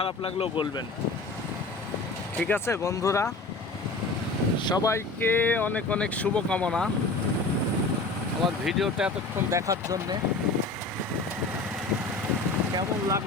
লাগলেও বলবেন, ঠিক আছে বন্ধুরা। সবাইকে অনেক অনেক শুভকামনা আমার ভিডিওটা এতক্ষণ দেখার জন্যে। কেমন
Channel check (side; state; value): right; quieter; 3.4 dB